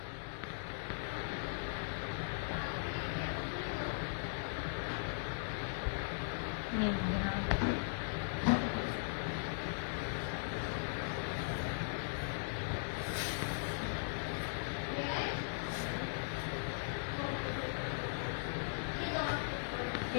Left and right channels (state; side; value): silent; right; digital silence